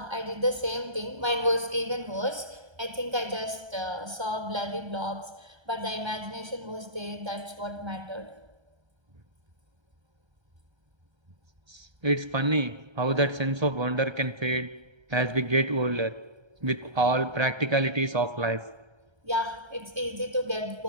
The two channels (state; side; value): late; left; 1.3 ms